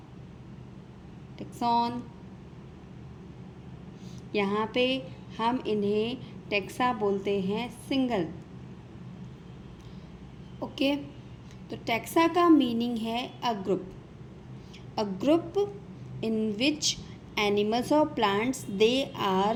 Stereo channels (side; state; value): both; identical; correlation 1.00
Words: यहाँ पे हम इन्हें टैक्सा बोलते हैं सिंगल। ओके, तो टैक्सा का मीनिंग है a group in which animals और plants they